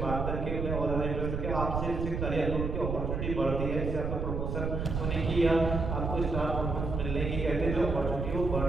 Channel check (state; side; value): noise; right; rumble, 2 dB below the sound